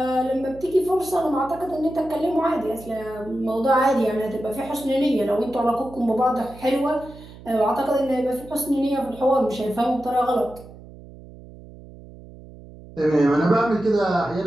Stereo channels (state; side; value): noise; right; hum, 18 dB below the sound